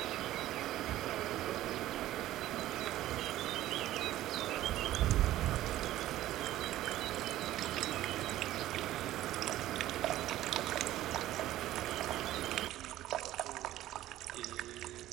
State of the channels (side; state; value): left; quieter; 14.5 dB